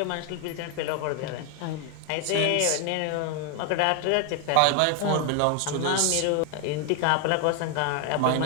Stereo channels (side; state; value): both; different; correlation 0.01